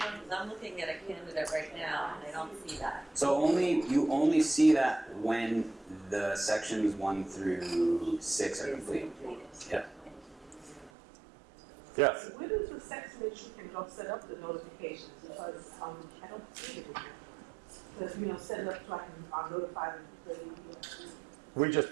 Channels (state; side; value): drops out; left; at 10.9 s